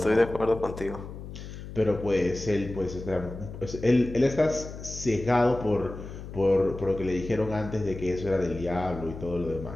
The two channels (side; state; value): left; noise; hum, 11 dB below the sound